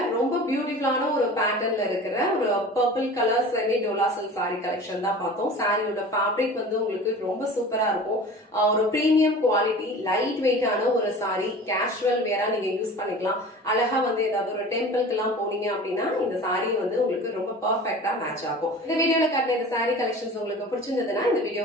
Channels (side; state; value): both; normal; correlation 0.39